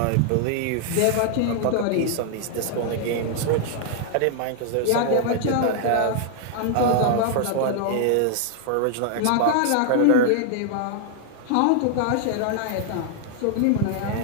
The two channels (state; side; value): different; both; correlation 0.00